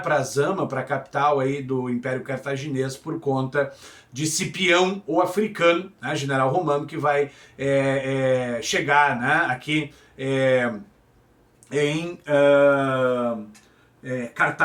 para Zama, para a capital aí do Império Cartaginês, por conta de Cipião, o africano, né, general romano, que vai chegar, né, aqui em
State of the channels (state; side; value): identical; both; correlation 1.00